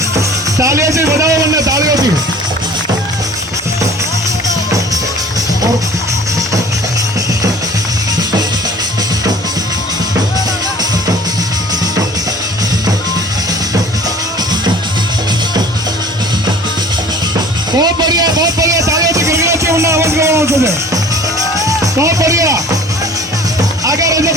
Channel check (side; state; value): both; normal; correlation 0.47